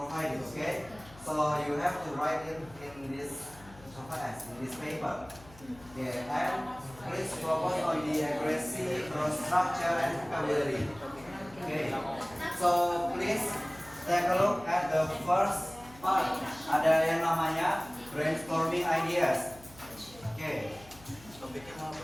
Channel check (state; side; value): noise; left; hum, 21 dB below the sound